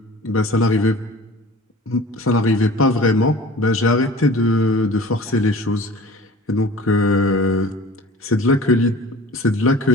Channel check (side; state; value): both; normal; correlation 0.42